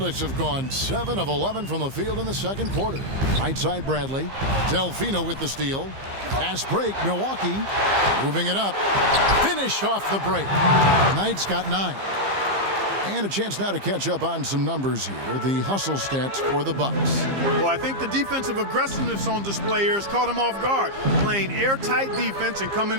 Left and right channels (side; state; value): left; late; 15 ms